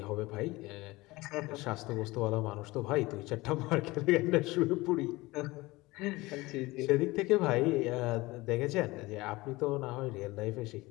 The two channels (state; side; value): quieter; right; 20.9 dB